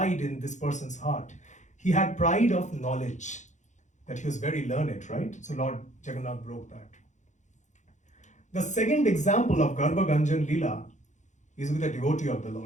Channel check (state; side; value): late; right; 0.35 ms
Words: in this person's heart. He had pride of knowledge, that he was very learned, right? So Lord Jagannath broke that. The second example of Garbha Ganjan Leela is with a devotee of the